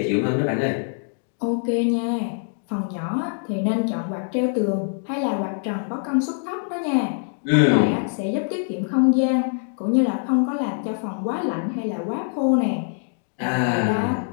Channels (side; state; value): right; silent; 61 dB below the other